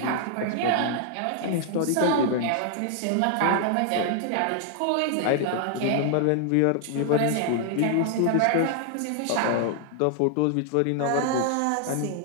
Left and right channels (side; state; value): both; different; correlation 0.00